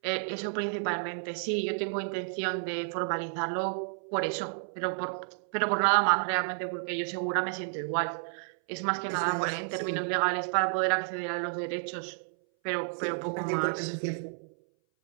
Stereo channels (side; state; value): left; silent; 57 dB below the other